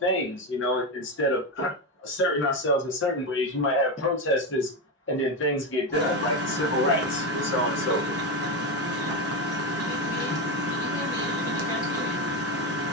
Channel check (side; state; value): both; normal; correlation 0.13